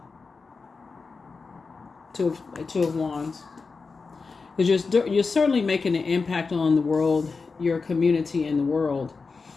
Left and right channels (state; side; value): quieter; right; 4.5 dB